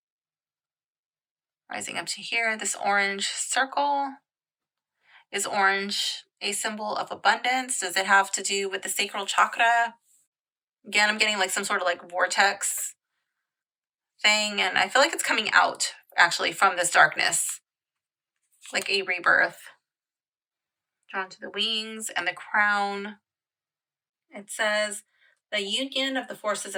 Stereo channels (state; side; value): identical; both; correlation 1.00